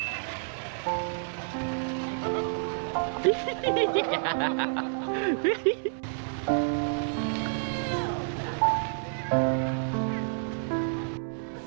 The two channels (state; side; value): silent; left; 58 dB below the other